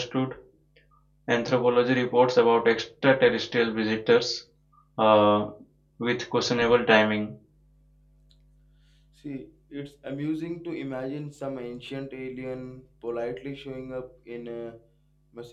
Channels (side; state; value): both; identical; correlation 1.00